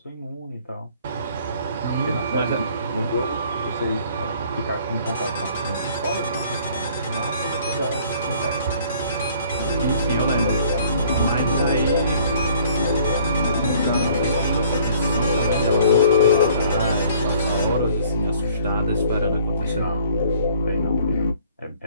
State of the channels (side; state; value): both; inverted; correlation -0.56